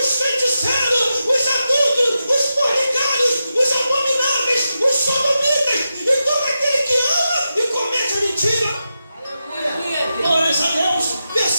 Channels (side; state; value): both; inverted; correlation -0.89